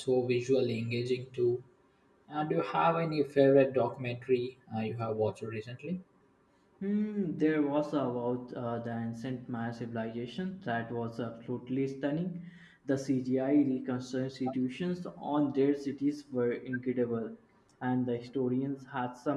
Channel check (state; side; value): identical; both; correlation 1.00